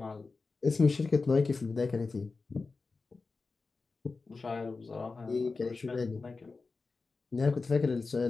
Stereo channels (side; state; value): right; quieter; 4.1 dB